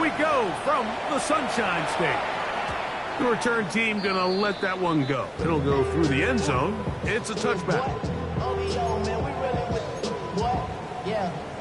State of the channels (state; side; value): identical; both; correlation 1.00